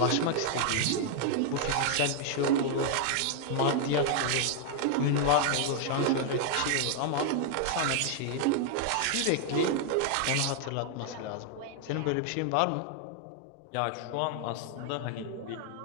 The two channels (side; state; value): both; different; correlation 0.00